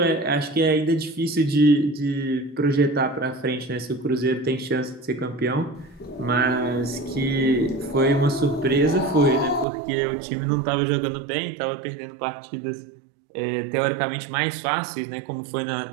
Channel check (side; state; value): left; drops out; at 9.7 s